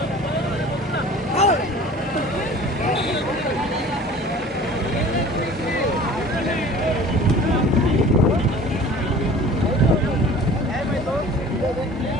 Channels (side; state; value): both; normal; correlation 0.44